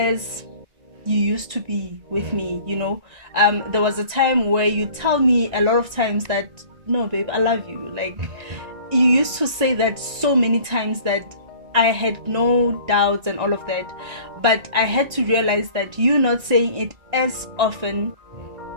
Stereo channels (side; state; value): left; late; 1.9 ms